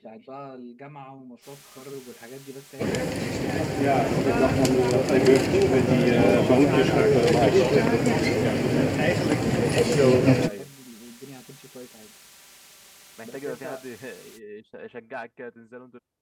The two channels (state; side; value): identical; both; correlation 1.00